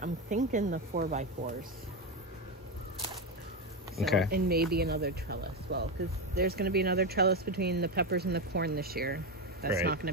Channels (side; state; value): both; normal; correlation 0.12